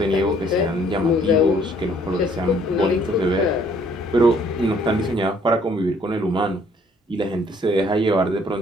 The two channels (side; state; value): both; normal; correlation 0.62